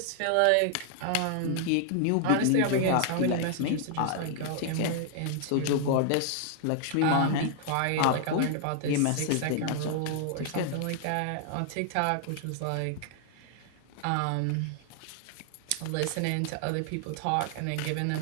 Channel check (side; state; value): both; different; correlation 0.00